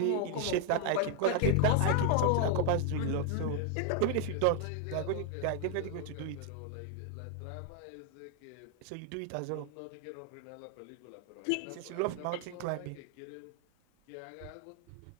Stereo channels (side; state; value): both; different; correlation 0.00